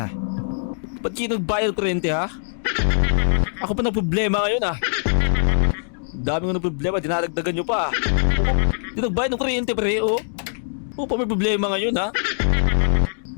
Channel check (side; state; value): right; silent; digital silence